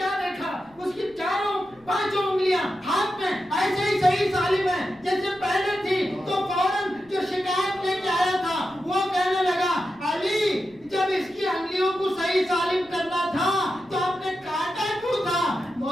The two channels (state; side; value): noise; left; rumble, 29 dB below the sound